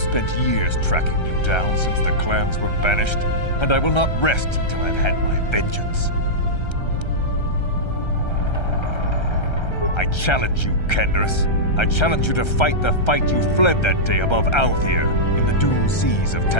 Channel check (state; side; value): late; right; 1.3 ms